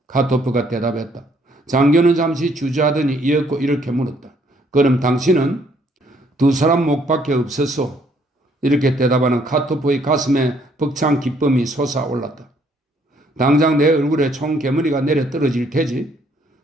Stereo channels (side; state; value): both; normal; correlation 0.66